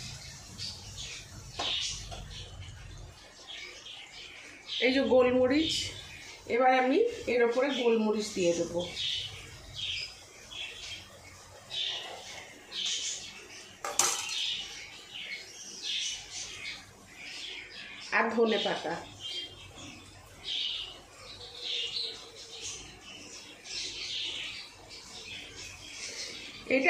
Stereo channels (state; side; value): identical; both; correlation 1.00